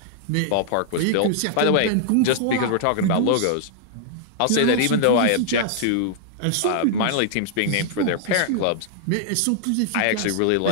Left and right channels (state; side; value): different; both; correlation -0.01